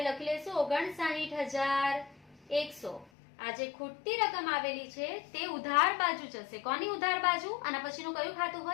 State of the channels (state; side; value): drops out; right; at 3.1 s